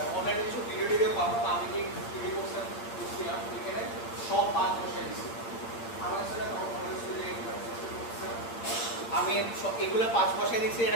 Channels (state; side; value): late; right; 8.7 ms